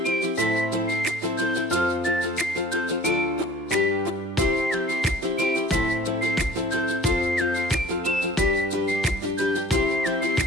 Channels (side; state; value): both; normal; correlation 0.47